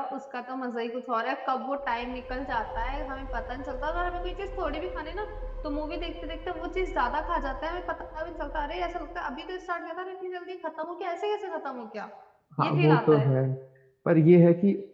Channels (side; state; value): both; identical; correlation 1.00